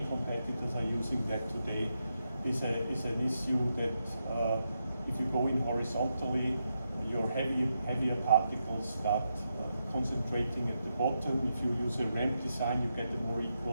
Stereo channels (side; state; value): both; inverted; correlation -0.84